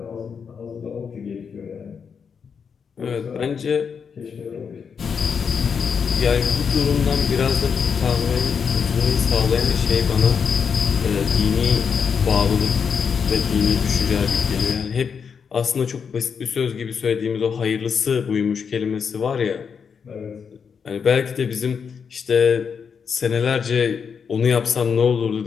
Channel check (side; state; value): right; quieter; 6.4 dB